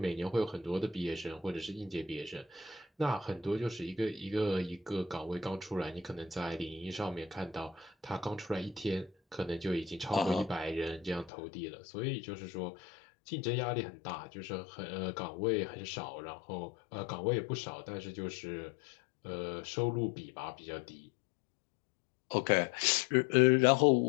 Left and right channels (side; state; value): right; drops out; at 11.3 s